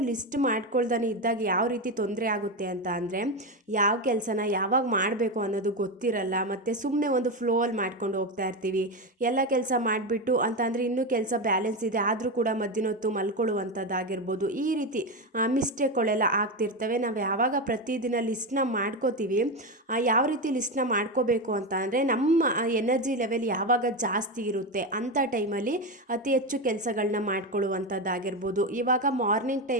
ಲಿಸ್ಟ್ ಮಾಡ್ಕೊಳ್ದಾನೆ ಇದ್ದಾಗ ಯಾವ ರೀತಿ ತೊಂದರೆ ಆಗುತ್ತೆ ಅಂತ ಅಂದರೆ, ಯಾವ ಕೆಲಸನ ಯಾವಾಗ ಮಾಡಬೇಕು ಅನ್ನೋದು ಗೊತ್ತಿರಲ್ಲ. ಮತ್ತು ಸುಮ್ಮನೆ ಒಂದು ಫ್ಲೋಲ್ಲಿ ಮಾಡ್ಕೊಂಡು ಹೋಗ್ತಾ ಇರ್ತೀವಿ. ಎಲ್ಲ ಕೆಲಸ ಮಾಡಿಬಿಟ್ಟು ಅಂತ ಅಂದರೆ ಇನ್ನೂ ಕೆಲಸ ಬ್ಯಾಲೆನ್ಸ್ ಇದೆ ಆದರೂ ಕೂಡ ಮಧ್ಯಾಹ್ನೊತ್ತು ಮಲ್ಕೊಳ್ಳುವಂಥದ್ದಾಗಿರ್ಬೋದು. ಈ ರೀತಿ ಮಿಸ್ಟೇಕ್ಗಳೆಲ್ಲ ಆಗ್ತಿರ್ತವೆ. ನಾವು ಯಾವಾಗ ಪ್ರತಿದಿನ ಲಿಸ್ಟ್ನ ಮಾಡ್ಕೋತೀವಿ, ಯಾವ ರೀತಿ ಲಿಸ್ಟ್ನ ಮಾಡ್ಕೋಬೇಕು ಅಂತ ಅಂದರೆ, ನಮ್ಮ ಎನರ್ಜಿ ಲೆವೆಲ್ ಯಾವಾಗ ಜಾಸ್ತಿ ಇರುತ್ತೆ ಅಂಥ ಟೈಮಲ್ಲಿ ಅತಿ ಹೆಚ್ಚು ಕೆಲಸಗಳನ್ನ ಮಾಡ್ಕೊಳ್ಳುವಂಥದ್ದಾಗಿರ್ಬೋದು. ಇವಾಗ ಮಾರ್ನಿಂಗ್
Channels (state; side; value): normal; both; correlation 0.14